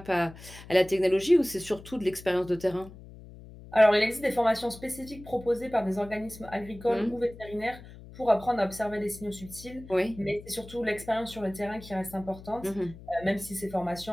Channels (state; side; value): noise; left; hum, 17 dB below the sound